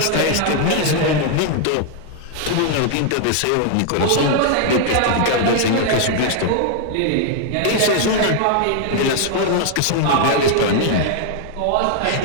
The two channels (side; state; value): both; different; correlation 0.00